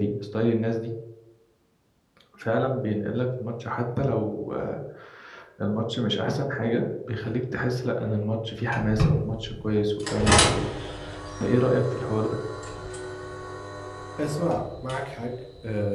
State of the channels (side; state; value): both; identical; correlation 1.00